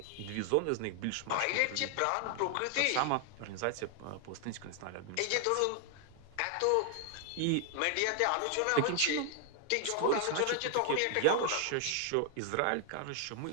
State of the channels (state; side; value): different; both; correlation 0.00